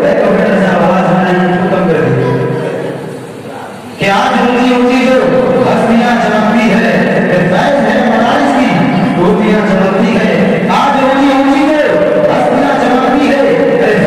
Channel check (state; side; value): identical; both; correlation 1.00